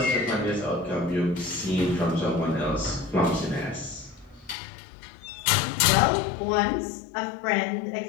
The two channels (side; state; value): right; drops out; at 4.5 s